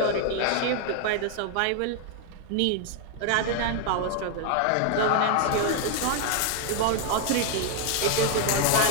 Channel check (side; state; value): both; different; correlation 0.00